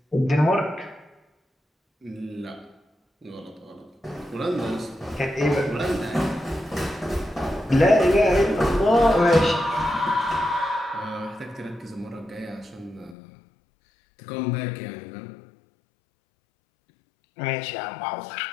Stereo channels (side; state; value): right; drops out; at 13.2 s